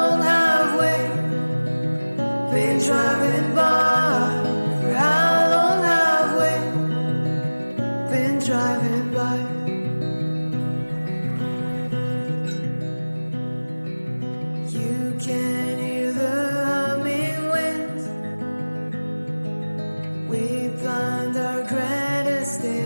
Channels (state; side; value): inverted; both; correlation -1.00